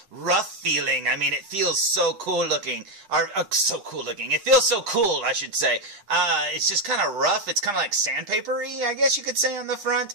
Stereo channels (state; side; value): late; left; 9.9 ms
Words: rough feeling. I mean, it feels so cool looking. It feels so cool, I should say. It's just kind of rough. It's kind of like sandpapery, I guess you could say, on the